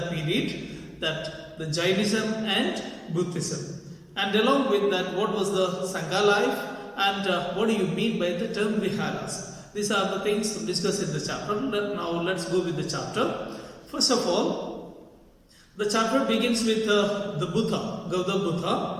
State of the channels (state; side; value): identical; both; correlation 1.00